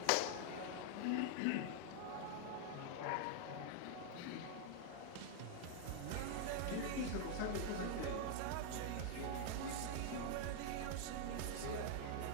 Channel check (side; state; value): both; different; correlation 0.00